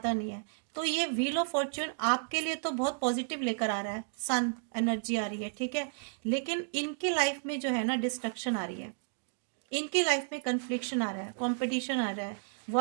नहीं है। तो ये व्हील ऑफ फॉर्च्यून आपके लिए तो बहुत पॉजिटिव लेकर आ रहा है, सन एनर्जी आ रही है, ठीक है। लेकिन इनकी लाइफ में जो है ना डिस्ट्रक्शन आ रही है, इनकी लाइफ में कन्फ्लिक्शन आ रहा है, कॉम्पिटिशन आ रहा है,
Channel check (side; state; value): left; silent; digital silence